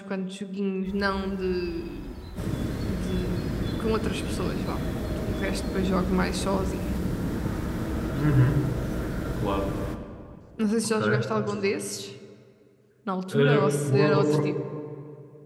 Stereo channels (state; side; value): identical; both; correlation 1.00